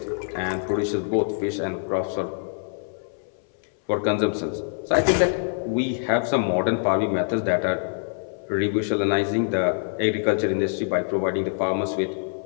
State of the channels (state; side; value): silent; right; 60 dB below the other